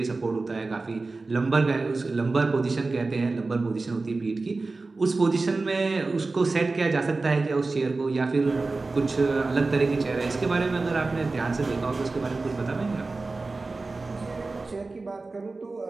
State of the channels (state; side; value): quieter; left; 3.6 dB